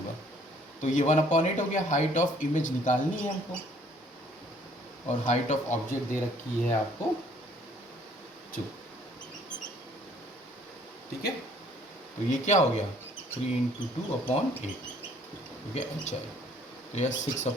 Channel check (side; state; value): both; normal; correlation 0.60